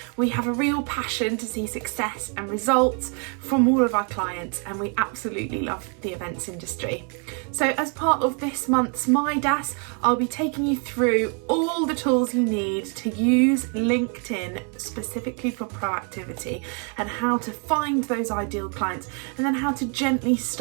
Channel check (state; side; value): quieter; left; 38.9 dB